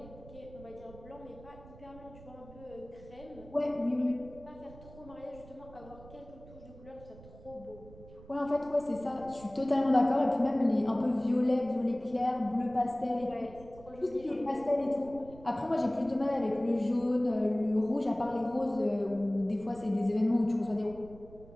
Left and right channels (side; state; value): right; noise; rumble, 19 dB below the sound